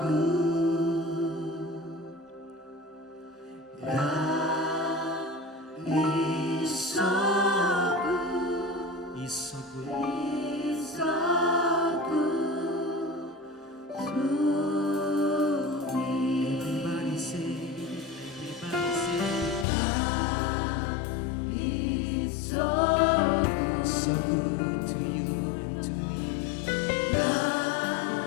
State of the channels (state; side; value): drops out; right; at 19.7 s